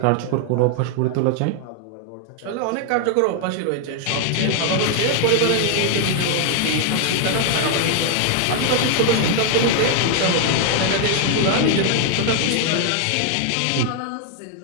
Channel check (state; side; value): different; both; correlation 0.00